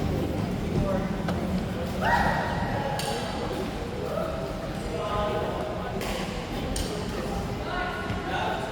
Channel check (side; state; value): both; identical; correlation 1.00